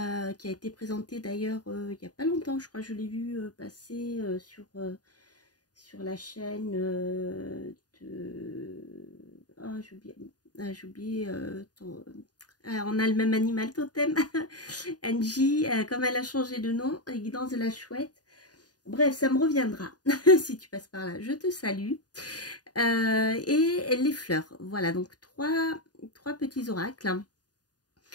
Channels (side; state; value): right; late; 0.69 ms